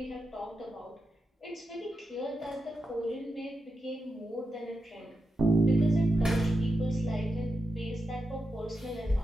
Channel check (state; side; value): normal; both; correlation 0.87